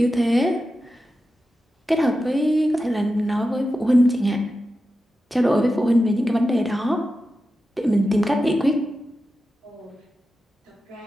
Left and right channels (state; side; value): normal; both; correlation 0.91